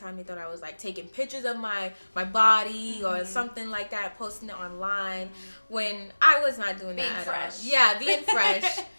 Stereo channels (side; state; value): both; inverted; correlation -1.00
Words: They thought I was like taking pictures of my body or something like that, posting it online, when I was not doing that at all. Yeah, being fresh,